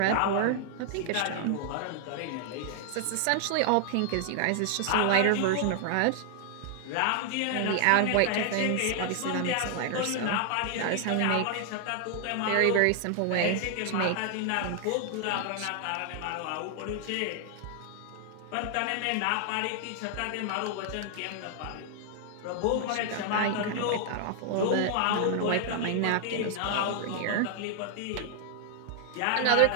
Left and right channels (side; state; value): both; different; correlation 0.00